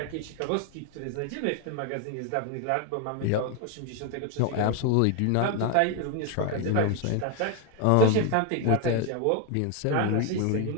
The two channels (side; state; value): both; different; correlation 0.01